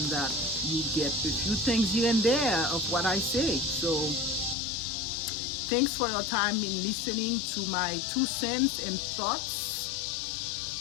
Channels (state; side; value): drops out; right; at 4.5 s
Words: that you get a few things here and there of what I say. So thanks for your time in listening to my 2 cents and thoughts